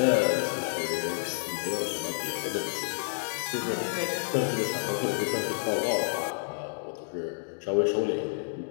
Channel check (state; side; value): silent; right; digital silence